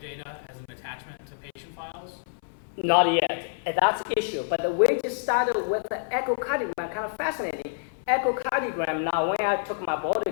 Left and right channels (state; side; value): silent; right; 60 dB below the other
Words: data as an attachment to patient files? Not yet. And that's the issue. But we just started with the echocardiogram, kind of fascinating. Echocardiogram, now when I took my board